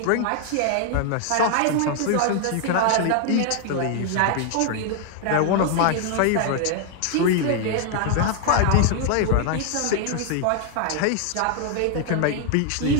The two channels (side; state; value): both; different; correlation 0.00